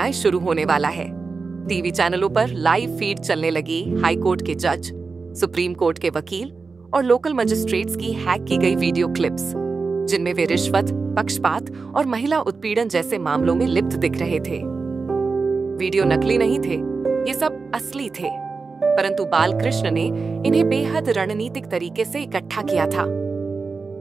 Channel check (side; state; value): left; quieter; 4.4 dB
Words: शुरू होने वाला है। टीवी चैनलों पर लाइव फीड चलने लगी हाई कोर्ट के जज, सुप्रीम कोर्ट के वकील और लोकल मजिस्ट्रेट्स की हैक की गई वीडियो क्लिप्स, जिनमें वे रिश्वत, पक्षपात और महिला उत्पीड़न जैसे मामलों में लिप्त दिख रहे थे। वीडियो नकली नहीं थे, ये सब असली थे, परंतु बालकृष्ण ने इन्हें बेहद रणनीतिक तरीके से इकट्ठा किया था।